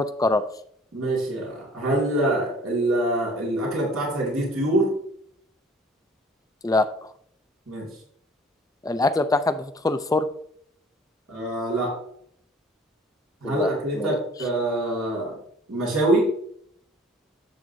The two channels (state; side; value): normal; both; correlation 0.51